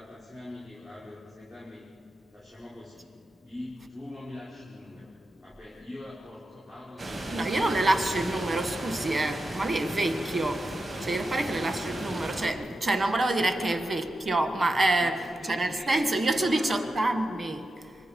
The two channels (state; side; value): normal; both; correlation 0.90